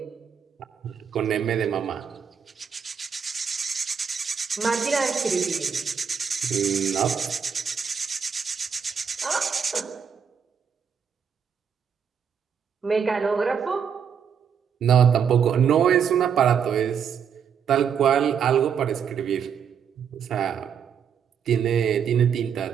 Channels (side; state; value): left; quieter; 7.2 dB